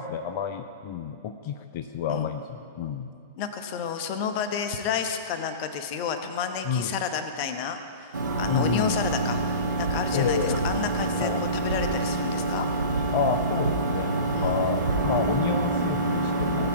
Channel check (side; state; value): both; inverted; correlation -0.33